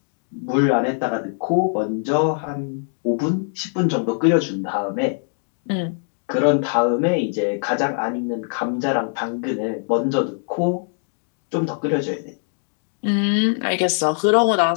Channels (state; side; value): silent; right; 64 dB below the other